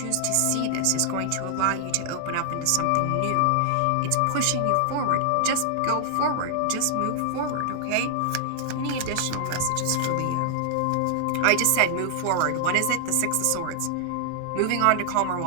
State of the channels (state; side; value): different; both; correlation 0.00